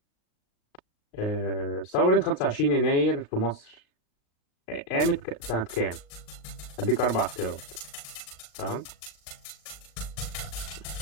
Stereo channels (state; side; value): late; right; 38 ms